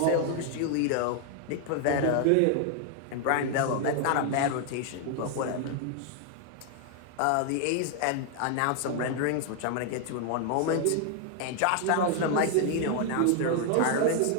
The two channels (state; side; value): different; both; correlation 0.00